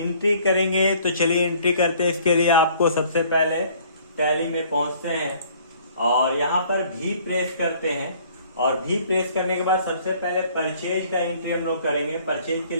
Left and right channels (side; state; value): both; inverted; correlation -0.56